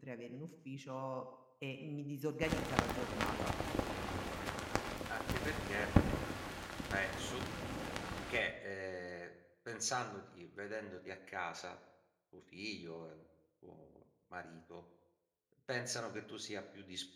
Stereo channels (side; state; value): both; identical; correlation 1.00